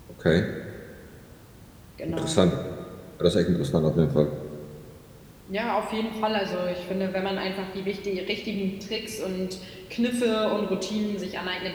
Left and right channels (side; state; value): both; identical; correlation 1.00